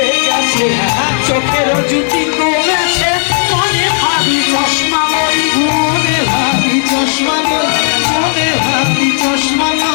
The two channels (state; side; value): silent; right; digital silence